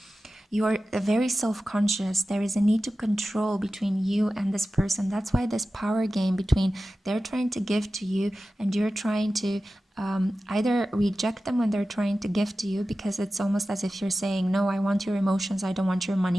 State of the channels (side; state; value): both; normal; correlation 0.94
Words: You are very self-conscious. There is a need to control between you and this person. That's why this power game between they're trying to give to you and you're trying to either reject them when they're trying to give to you, because it's almost as if you're saying, no, I want your emotions, I don't want your